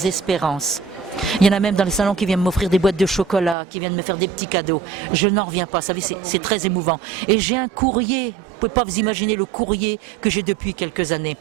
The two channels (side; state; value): left; drops out; at 3.6 s